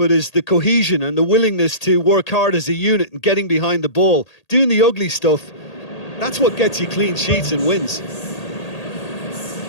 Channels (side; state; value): right; late; 1.8 ms